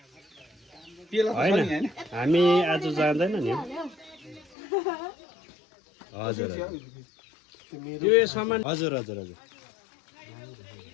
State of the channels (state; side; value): drops out; right; at 4.5 s